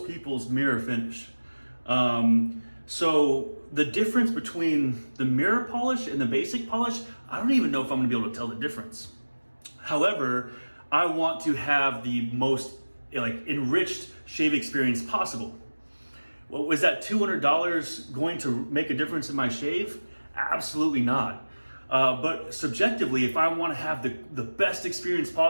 people's mirror finish. So the difference between the mirror polish and the basic polish, I don't even know if I'm gonna be able to tell the difference. However, I want to have the most enriched shave experience possible. Well, was that $200 going to make a difference in my shave? Absolutely not. But subjectively, if I want to have the best experience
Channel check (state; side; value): inverted; both; correlation -1.00